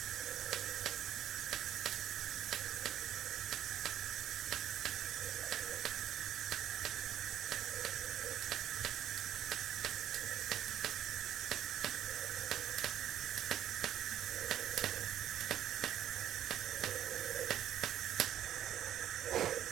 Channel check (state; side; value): quieter; left; 11.2 dB